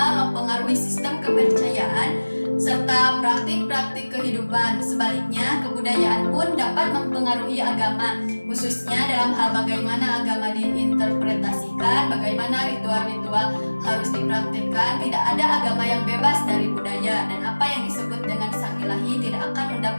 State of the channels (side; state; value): both; inverted; correlation -1.00